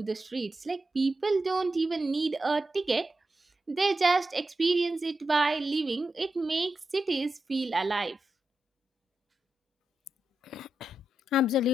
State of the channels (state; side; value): normal; both; correlation 0.88